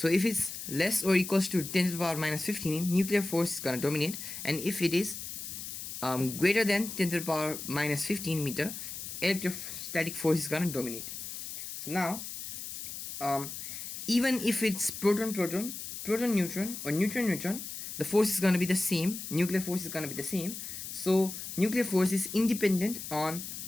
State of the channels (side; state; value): left; noise; hiss, 8 dB below the sound